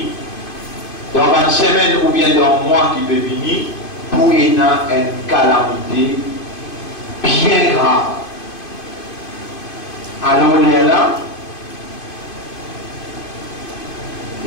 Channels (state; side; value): late; right; 2.5 ms